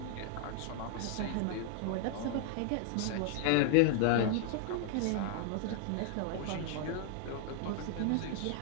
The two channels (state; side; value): different; both; correlation 0.00